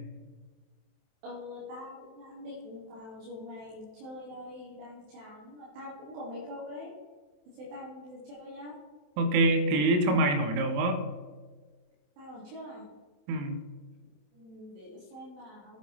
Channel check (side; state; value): left; late; 27 ms